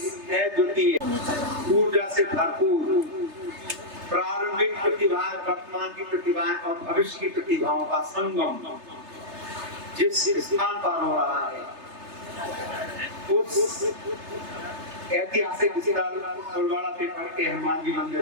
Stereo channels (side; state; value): left; late; 3.3 ms